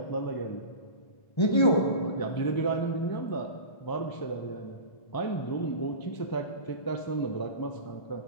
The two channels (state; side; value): late; right; 1.3 ms